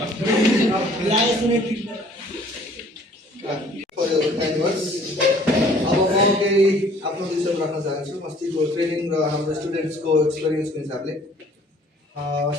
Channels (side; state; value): both; normal; correlation 0.56